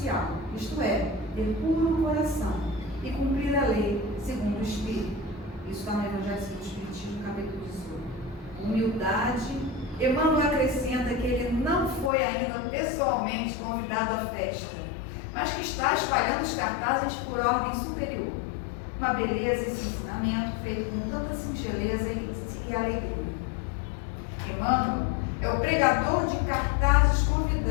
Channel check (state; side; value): drops out; right; at 12.1 s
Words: isto é, ter puro coração e cumprir a lei segundo o Espírito. Isso está no Evangelho segundo o Espiritismo, capítulo 18. Humildade. Emmanuel acrescenta que ele não foi ainda pessoalmente convidado à festa, mas que está espalhando os cartazes por ordem superior. Uma beleza esse ensinamento feito com tanta singeleza e alegria. Emmanuel é o pregador de cartazes